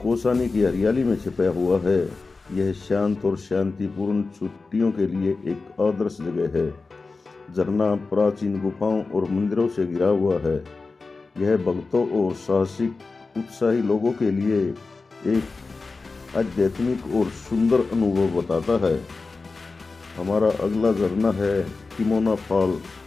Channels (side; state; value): right; quieter; 4.0 dB